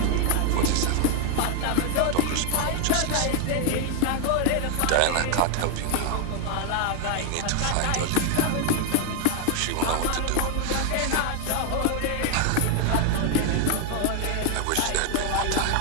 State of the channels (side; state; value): both; different; correlation 0.00